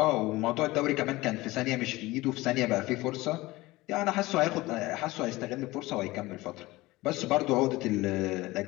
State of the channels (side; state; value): right; quieter; 19.8 dB